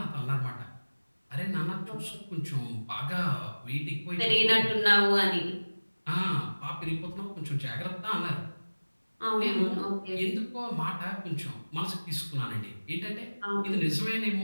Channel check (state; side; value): inverted; both; correlation -1.00